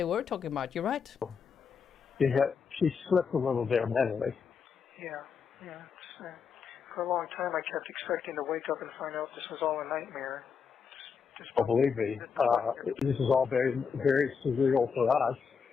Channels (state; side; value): quieter; right; 6.2 dB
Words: were talking about. You're right. Yeah, she slipped a little there mentally. Yeah. For a long time, I kept expecting to wake up and find out this was all a nightmare. Oh, believe me, this is all very, very surreal for us.